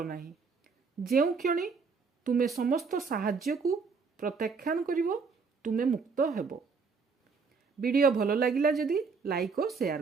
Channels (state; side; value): quieter; left; 5.0 dB